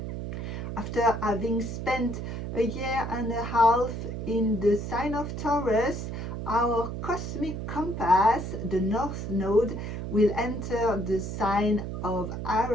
After having spent a year and a half in the sign of Taurus, our cosmic compass, the north node, will enter the sign of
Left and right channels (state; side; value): noise; right; hum, 5 dB below the sound